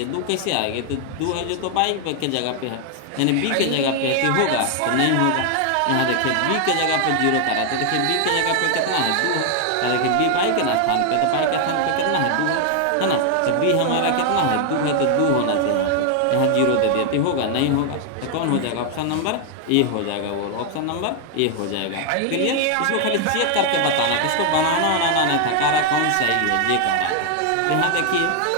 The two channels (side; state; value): both; different; correlation 0.00